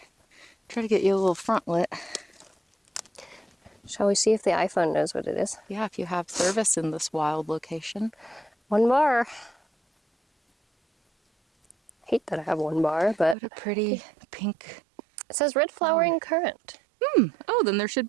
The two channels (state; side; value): drops out; left; at 13.4 s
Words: you a little front lit. Shall we see if the iPhone knows what it is? Yeah, if you have service in this wild location. 1 bar. Hate that I have 1 bar, but What a pretty pink. it says red flowering currant. Oh, then there should